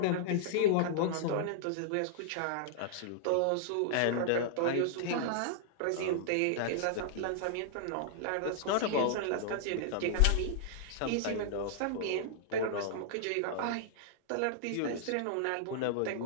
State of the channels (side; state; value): both; different; correlation -0.01